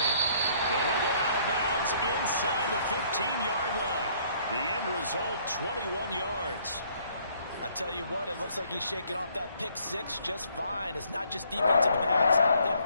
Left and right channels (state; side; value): inverted; both; correlation -0.63